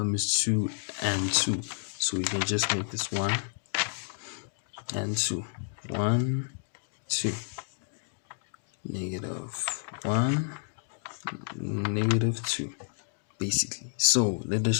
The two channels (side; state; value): right; silent; digital silence